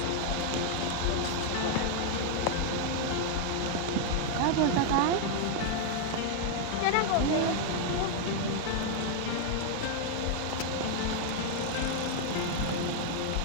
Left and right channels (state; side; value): different; both; correlation 0.00